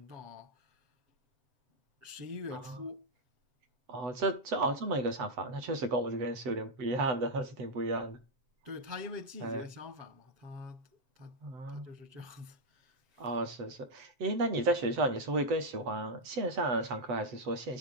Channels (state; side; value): late; left; 7.8 ms